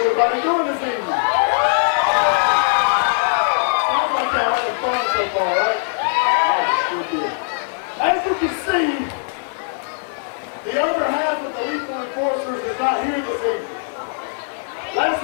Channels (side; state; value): right; silent; digital silence